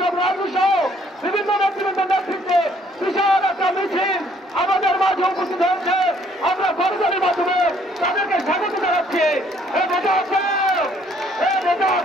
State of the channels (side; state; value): both; normal; correlation 0.63